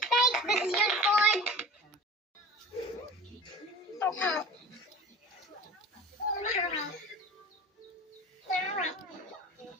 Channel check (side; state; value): both; normal; correlation 0.37